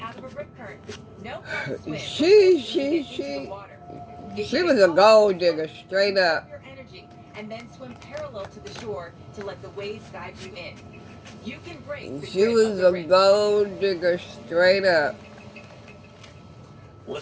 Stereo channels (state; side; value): identical; both; correlation 1.00